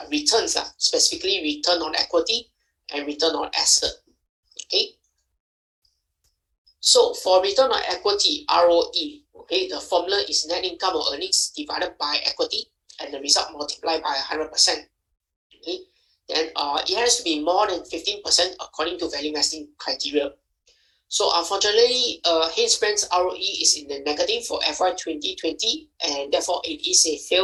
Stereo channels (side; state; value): both; identical; correlation 1.00